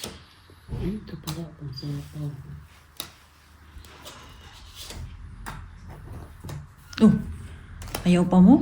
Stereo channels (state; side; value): identical; both; correlation 1.00